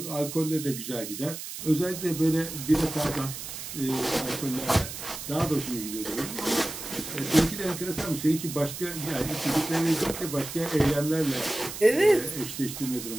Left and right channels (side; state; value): right; noise; hiss, 9 dB below the sound